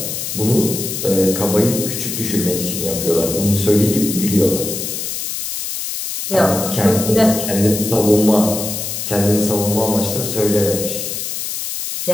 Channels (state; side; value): noise; left; hiss, 5 dB below the sound